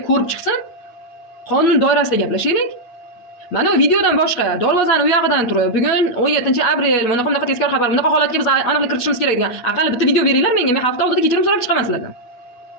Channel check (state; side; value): late; right; 8.2 ms